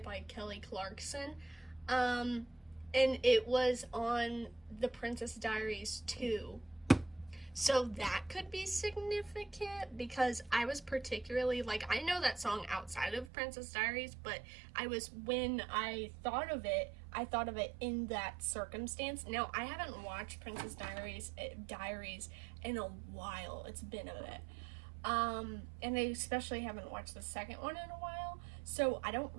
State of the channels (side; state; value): left; drops out; at 13.3 s